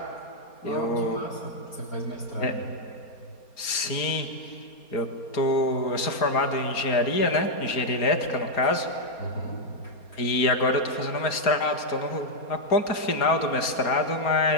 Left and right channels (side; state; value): right; late; 4.3 ms